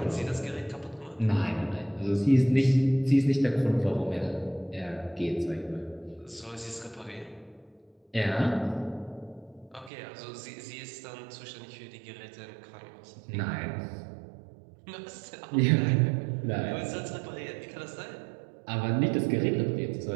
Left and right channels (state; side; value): drops out; left; at 9.9 s